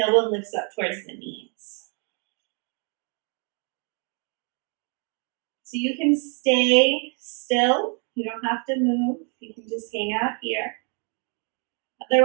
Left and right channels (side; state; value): left; quieter; 38.1 dB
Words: lifts up towards the knees. So you can stay still. You don't have to move. You can just hang out here.